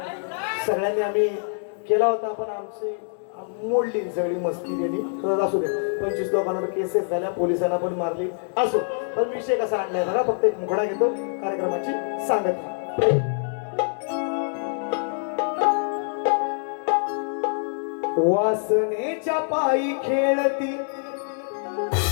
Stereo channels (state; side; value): silent; right; 62 dB below the other